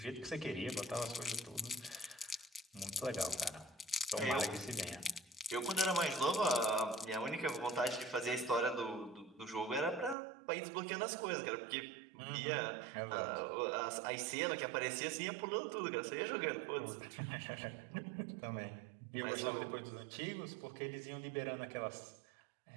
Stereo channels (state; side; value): drops out; left; at 10.2 s